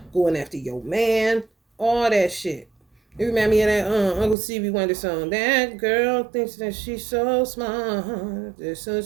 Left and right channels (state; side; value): drops out; left; at 4.4 s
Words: going after your man, all that shit. It remind me of that Uncle Stevie Wonder song. That girl thinks that she's so smart, that